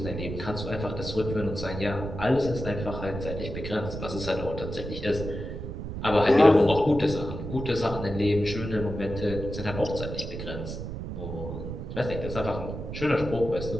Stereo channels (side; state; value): right; noise; rumble, 7 dB below the sound